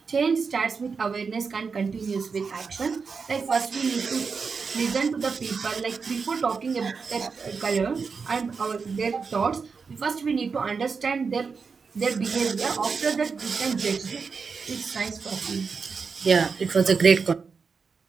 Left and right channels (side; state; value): left; quieter; 5.2 dB